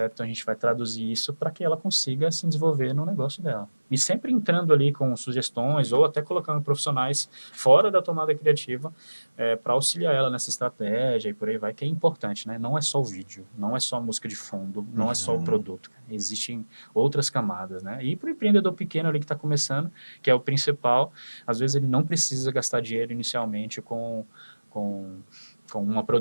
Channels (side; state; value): both; inverted; correlation -1.00